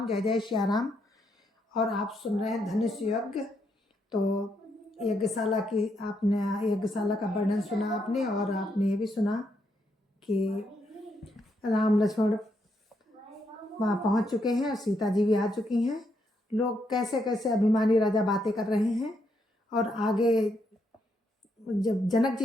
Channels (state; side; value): normal; both; correlation 0.78